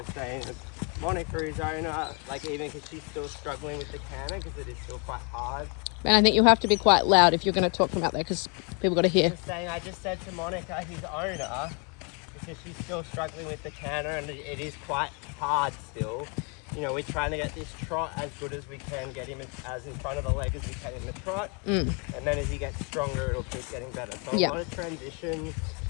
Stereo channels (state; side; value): quieter; right; 35.3 dB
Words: saying Monica is owner, even because she's still struggling with the canter because it is still quite hard. And I think you'll have to be quite loud if you're going to talk from out there because people got to hear. I just said to Monica, his owner, because she's still struggling with the canter and it is quite hard still. We're trying to get this trot as good as we can, get him as in front of the leg as we can in the trot. And then as he gets stronger, it'll keep getting better. So a lot of transitions.